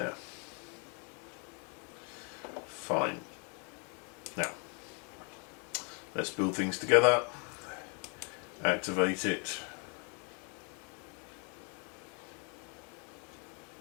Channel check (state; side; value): quieter; right; 37.2 dB